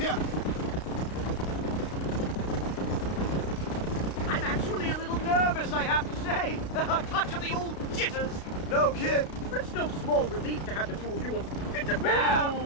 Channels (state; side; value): late; right; 33 ms